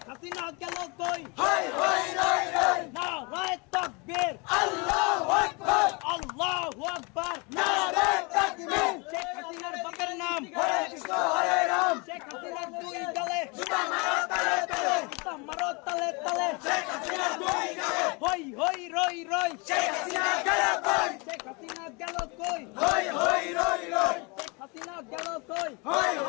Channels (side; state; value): right; quieter; 29.8 dB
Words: হাসিনা গেল কই হাই হাই রাই রাই নারায়ে তাকবীর আল্লাহু আকবার আল্লাহু আকবার নারে তাকবীর শেখ হাসিনার বাপের নাম হরে কৃষ্ণ হরে রাম শেখ হাসিনার দুই গালে জুতা মারো তালে তালে জুতা মারো তালে তালে শেখ হাসিনা দুই গালে হই হই রই রই শেখ হাসিনা গেল কই শেখ হাসিনা গেল কই হই হই রই রই শেখ হাসিনা গেল কই হই